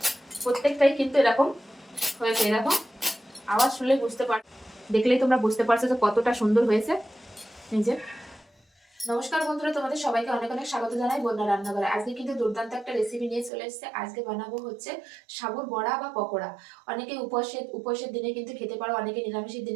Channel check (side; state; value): left; drops out; at 13.5 s